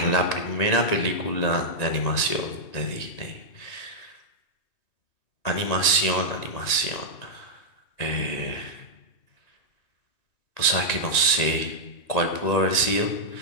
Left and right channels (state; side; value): late; right; 1.9 ms